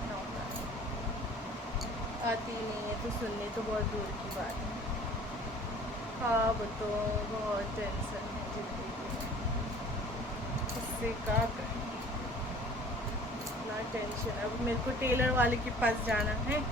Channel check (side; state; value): both; normal; correlation 0.48